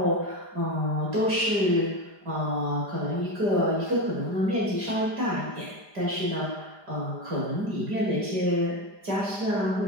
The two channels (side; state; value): left; late; 5.0 ms